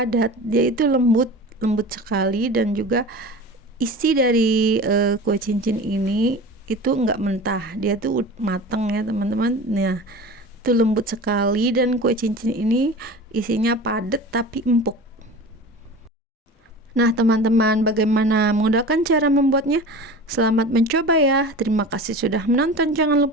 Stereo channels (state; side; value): normal; both; correlation 0.35